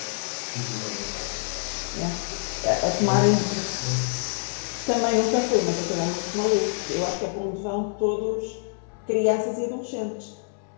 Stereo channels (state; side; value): silent; right; 61 dB below the other